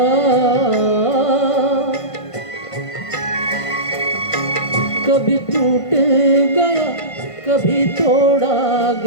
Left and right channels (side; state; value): right; late; 1.5 ms